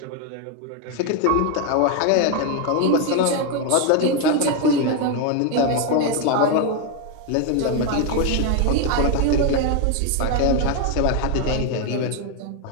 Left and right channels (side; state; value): both; different; correlation 0.01